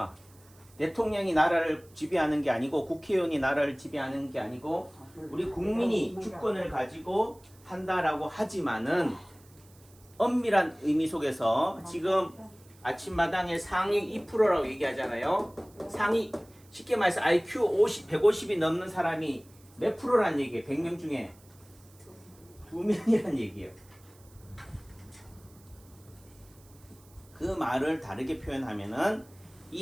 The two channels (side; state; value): right; noise; hiss, 27 dB below the sound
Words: 대통령이 나라를 지배하는 게 아니고 국회의원이 나라를 지배하는 게 아니고 우리 국민이 주권을 가지고 한다라고 하지만은 엄밀한 의미 속에서 지금 아침마당에 상위 2%라고 얘기하잖아요. 상위 쉽게 말해서 IQ 150이 넘는 사람이 몇 프로란 얘기예요? 100명 중에 2명이란 얘기예요. 그 말을 다르게 표현하면은